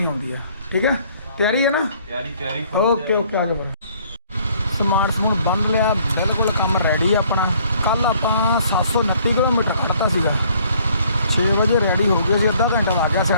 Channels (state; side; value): inverted; both; correlation -0.61